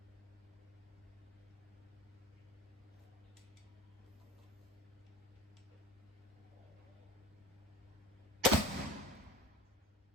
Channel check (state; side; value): normal; both; correlation 0.35